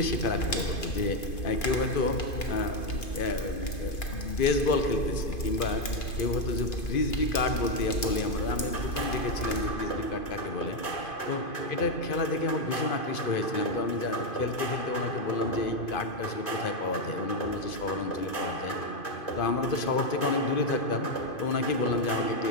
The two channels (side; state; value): right; late; 2.5 ms